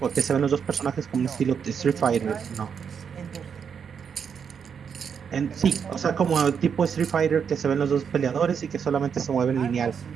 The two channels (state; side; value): quieter; left; 7.0 dB